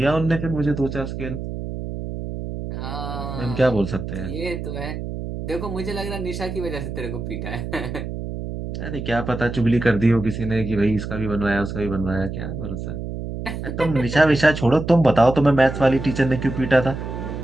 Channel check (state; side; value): noise; right; hum, 6 dB below the sound